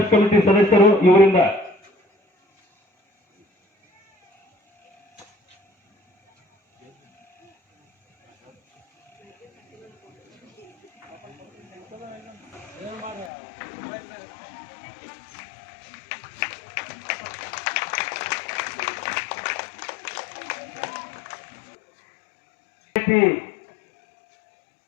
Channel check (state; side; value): drops out; right; at 13.3 s